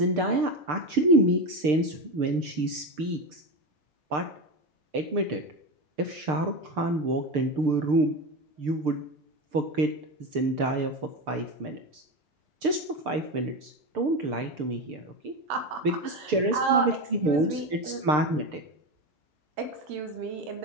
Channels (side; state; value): left; late; 6.7 ms